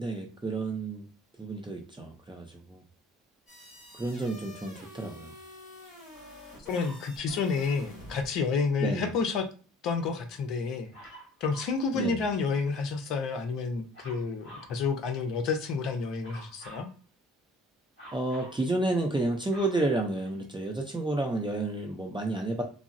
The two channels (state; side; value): normal; both; correlation 0.55